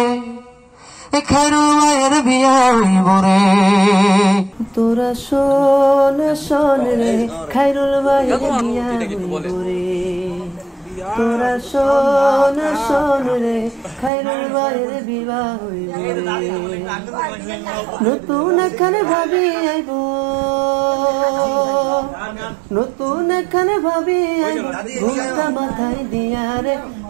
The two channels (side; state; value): left; drops out; at 14.1 s